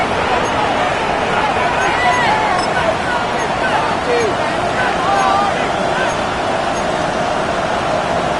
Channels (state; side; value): identical; both; correlation 1.00